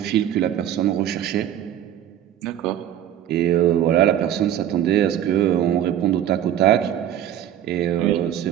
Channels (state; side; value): quieter; left; 11.0 dB